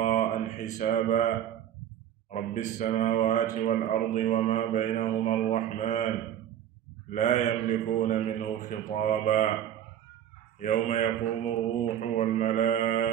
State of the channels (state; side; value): quieter; left; 10.4 dB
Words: حسابا رب السماوات والأرض وما بينهما الرحمن لا يملكون منه خطابا يوم يقوم الروح